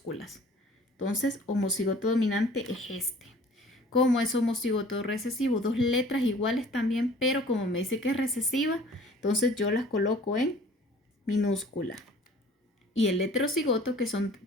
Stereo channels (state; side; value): normal; both; correlation 0.50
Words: Entonces, homocigoto dominante es este. Como es homocigoto recesivo, 2 letras iguales también, pero como me dice que es recesiva, entonces yo las coloco en minúscula. Y el heterocigoto, que son